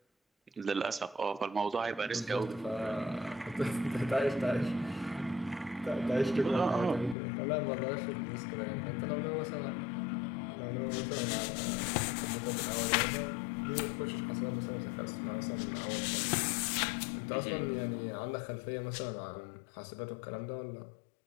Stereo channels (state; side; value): drops out; right; at 7.2 s